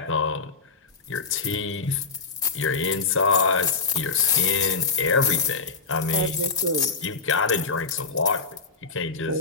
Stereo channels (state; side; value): quieter; right; 4.6 dB